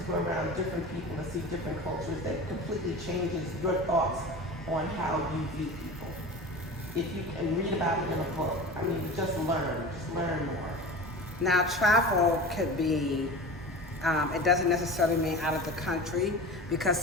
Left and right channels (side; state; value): both; normal; correlation 0.33